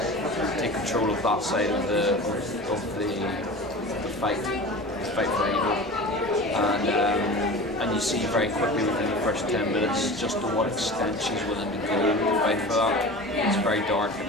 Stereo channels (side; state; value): both; normal; correlation 0.35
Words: take control of that side of the fight for evil. And you see very quickly within the first 10 minutes just to what extent she's willing to go to fight for that. It's very dark